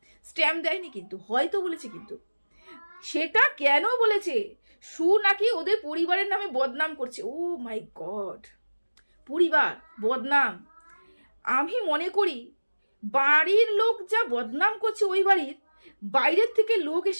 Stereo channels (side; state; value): both; inverted; correlation -1.00